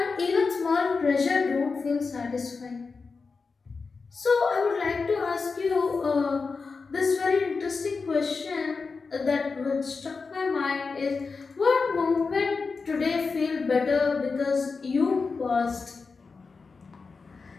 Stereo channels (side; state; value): right; quieter; 4.6 dB